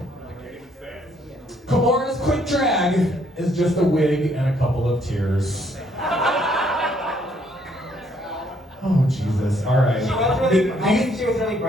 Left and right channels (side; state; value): both; normal; correlation 0.68